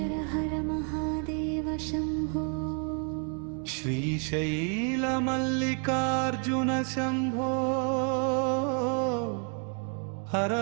హర మహాదేవ శంభో. శ్రీశైల మల్లికార్జున శంభో. హర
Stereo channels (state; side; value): quieter; left; 39.7 dB